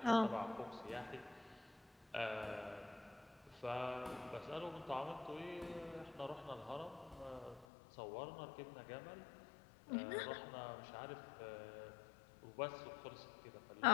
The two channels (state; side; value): drops out; right; at 7.7 s